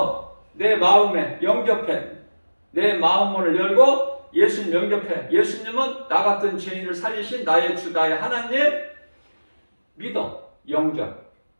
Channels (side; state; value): both; inverted; correlation -1.00